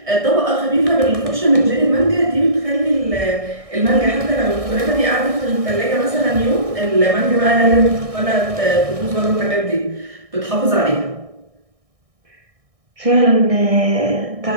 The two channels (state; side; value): late; left; 1.6 ms